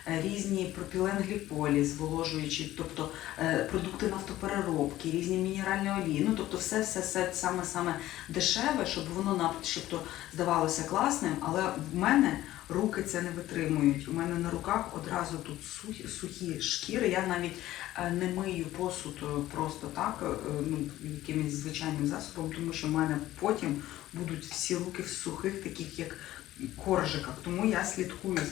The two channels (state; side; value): quieter; right; 14.9 dB